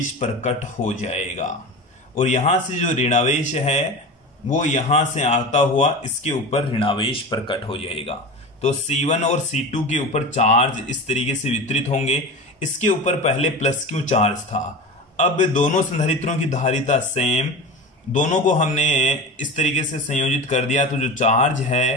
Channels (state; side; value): normal; both; correlation 0.29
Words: प्रकट हो जाएगा और यहां से जो ऋणावेश है वो यहां से आता हुआ इसके ऊपर ऋणावेश प्रकट हो जाएगा। तो C1 और C2 के ऊपर चार्ज इस तरीके से वितरित होंगे। इसके ऊपर पहले प्लस Q चार्ज था। अब दोनों संधारित्रों की धारिता सेम, दोनों को हमने इस तरीके से संयोजित कर दिया तो जो चार्ज है